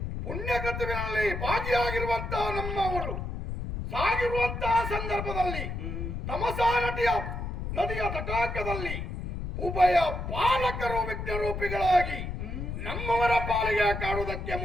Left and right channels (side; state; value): left; noise; rumble, 5 dB below the sound